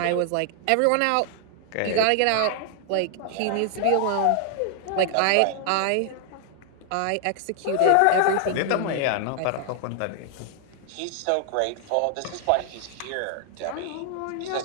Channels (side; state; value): both; different; correlation 0.00